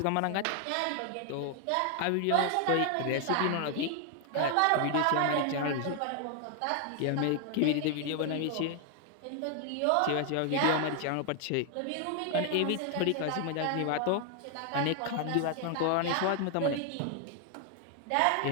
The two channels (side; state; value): both; different; correlation 0.00